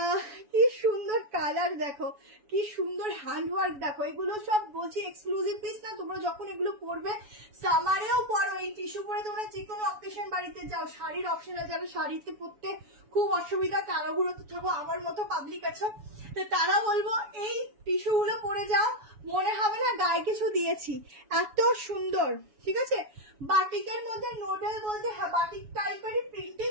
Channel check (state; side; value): late; left; 7.0 ms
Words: কি সুন্দর কালার, দেখো কি সুন্দর হ্যান্ড ওয়ার্ক। দেখো এগুলো সব বলছি এক্সক্লুসিভ পিস না, তোমরা যখন এগুলো পরবে সামারেও পরো, এই টিস্যু পরে তোমরা যে কোনো অকেশন বাড়িতে যাও, শাড়ির অপশন আছে, যারা শাড়িতে পরতে খুব অসুবিধা তারাগুলোতে থাকো, আমার মতো পাবলিক আছো, তো তারা বলবো এই টিস্যু গুলো পরে যাও, মনে হবে না গায়ে কিছু দিয়েছি, এত সুন্দর, ঠিক আছে? বাটিকের মধ্যে নুডল বলতে, হ্যাঁ বাটিক টাইপেরই প্রিন্টিং